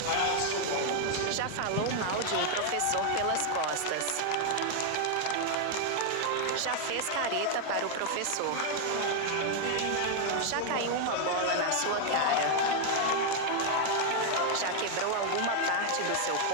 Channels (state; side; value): different; both; correlation 0.00